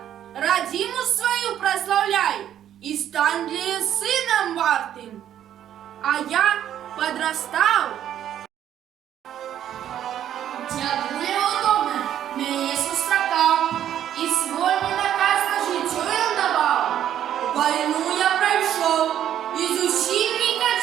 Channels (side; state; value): left; quieter; 10.7 dB